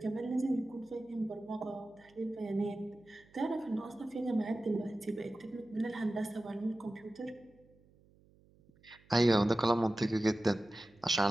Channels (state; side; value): noise; right; hum, 29 dB below the sound